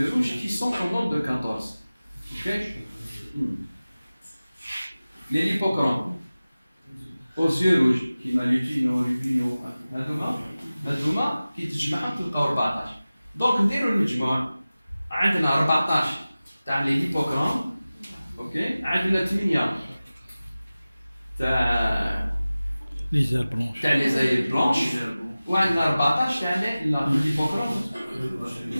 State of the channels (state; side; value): inverted; both; correlation -0.97